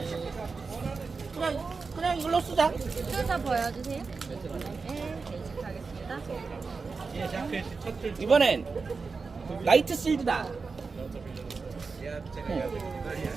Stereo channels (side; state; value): left; quieter; 4.6 dB